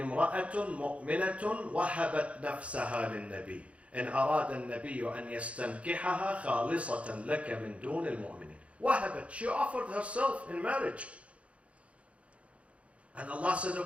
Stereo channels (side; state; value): left; late; 0.063 ms